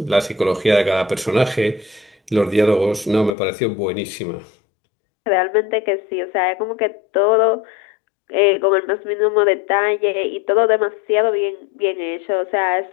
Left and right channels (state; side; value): drops out; right; at 3.4 s